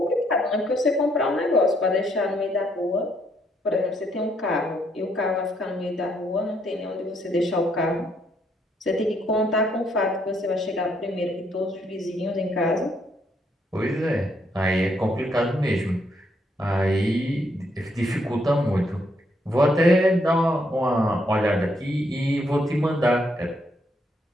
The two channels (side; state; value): both; normal; correlation 0.73